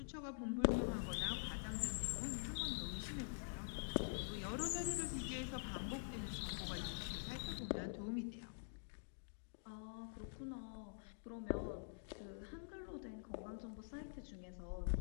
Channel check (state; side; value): silent; right; digital silence